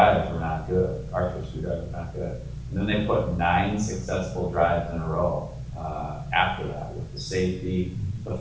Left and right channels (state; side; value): identical; both; correlation 1.00